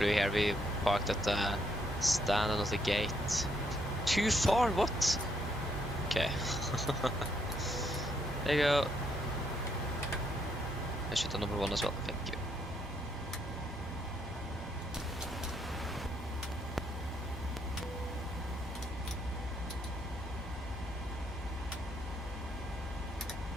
here, we parked at the stand and not the gate. Too far? What? Okay. There you go. I should have number 1 as well. Thank you.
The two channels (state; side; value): normal; both; correlation 0.73